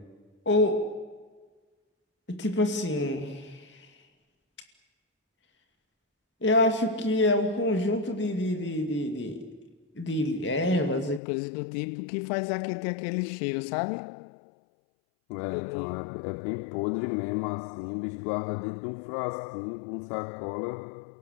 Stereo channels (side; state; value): right; drops out; at 11.2 s